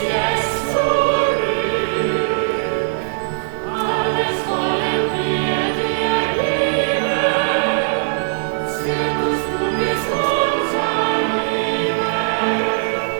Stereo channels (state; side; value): silent; left; 66 dB below the other